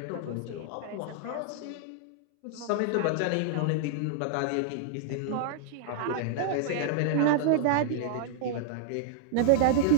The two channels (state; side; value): different; both; correlation -0.01